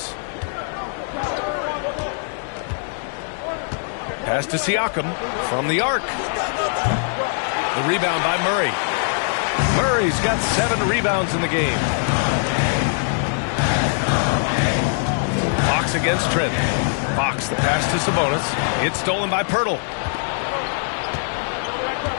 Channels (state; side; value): silent; right; digital silence